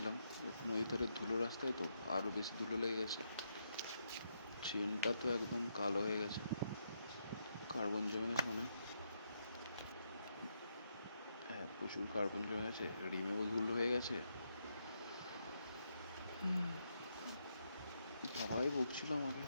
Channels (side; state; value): both; inverted; correlation -0.80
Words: নদীর ধারে ধুলো রাস্তায় তো আরও বেশি ধুলো লেগে গেছে। চেনটা তো একদম কালো হয়ে গেছে, কার্বন জমে গেছে মনে হয়। হ্যাঁ, প্রচুর কার্বন জমে গেছে, রিমেও ধুলো হয়ে গেছে। বাবাই বকছিল আমাকে,